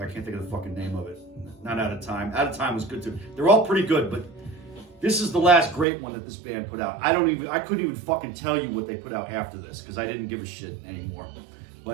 I can't think of the fucking name of it. Not Out of Time. Out of Time was good too. They're all pretty good, but this is the last great one that this band put out. I couldn't even fucking tell you what they put out after this because I didn't give a shit anymore.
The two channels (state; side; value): drops out; left; at 5.9 s